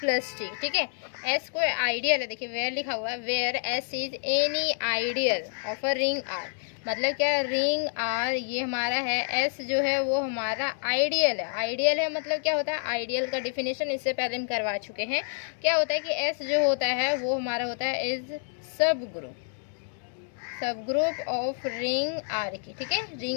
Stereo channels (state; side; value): silent; right; 59 dB below the other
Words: T. ठीक है, एस कोई आइडियल है। देखिए वेयर लिखा हुआ है, where S is any ideal of a ring R. मतलब क्या, रिंग आर ये हमारा है, एस जो है वो हमारा आइडियल है। आइडियल है मतलब क्या होता है, आइडियल का डिफिनेशन इससे पहले हम करवा चुके हैं। क्या होता है कि एस जो होता है वो हमारा होता है इज सब ग्रुप ऑफ रिंग आर की। ठीक है,